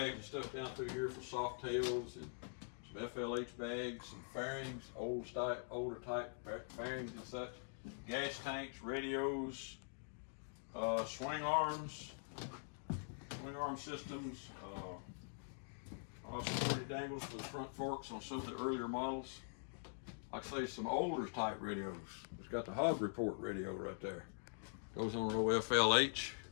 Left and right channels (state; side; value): silent; right; digital silence